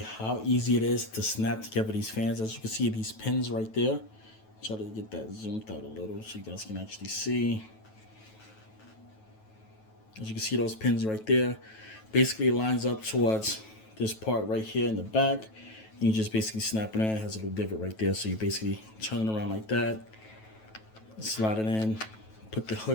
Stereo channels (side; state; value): right; late; 9.2 ms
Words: easy it is to snap together these fans. As you can see, these pins right there. Try to get that zoomed out a little so you guys can actually see. As you can see, those pins right there basically lines up towards this part right here in the back. And you just basically snap it in. It has a little divot right there. So you basically turn it around like that, slide it in, put the